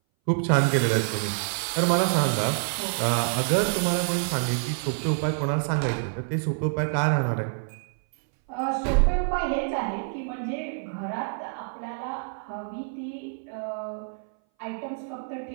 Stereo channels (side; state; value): left; silent; 59 dB below the other